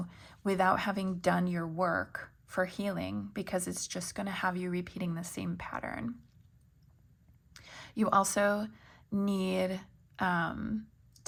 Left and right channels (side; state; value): both; identical; correlation 1.00